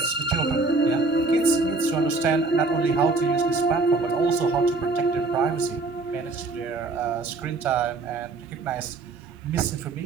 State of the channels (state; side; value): quieter; left; 3.5 dB